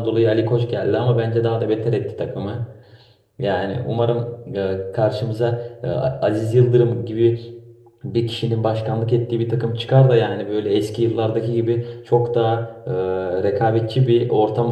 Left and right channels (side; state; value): both; identical; correlation 1.00